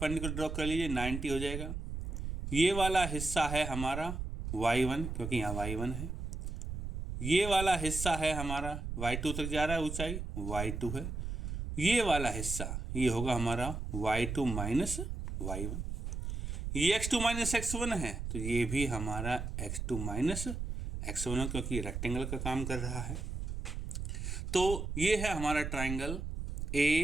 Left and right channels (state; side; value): noise; right; rumble, 5 dB below the sound